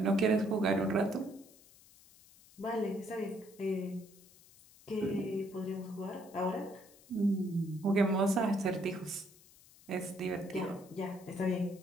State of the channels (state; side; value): noise; left; hiss, 24 dB below the sound